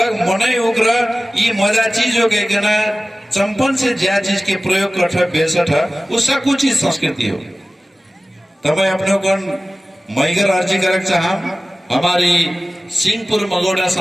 मनै उग्र ये मजा चीज हो गए ना चंपन से ज्या चीज के प्रयोग कर बेसठ उसका कुछ चीज संस्कृति हो तब अपने को मैगर अर्जी करक चाह हमारी सिंहपुर मगोड़ा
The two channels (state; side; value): normal; both; correlation 0.97